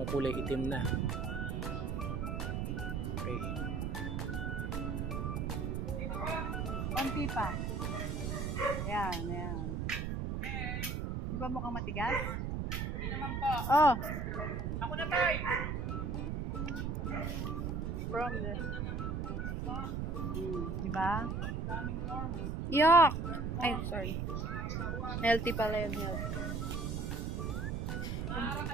kulay itim na. Okay. Konti pa. Ayan, ayan. Di ba mukhang matigas? Hindi naman po. Oh. Ako na tayo. From the... Diba? Yuck! Ay, sorry. Healthy pala yun, healthy.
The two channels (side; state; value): right; noise; rumble, 1 dB below the sound